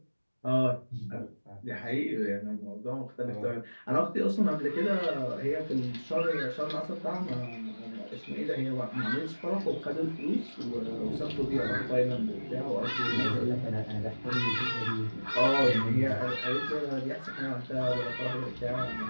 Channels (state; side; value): inverted; both; correlation -1.00